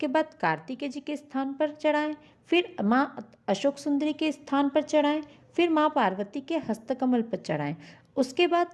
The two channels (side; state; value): both; identical; correlation 1.00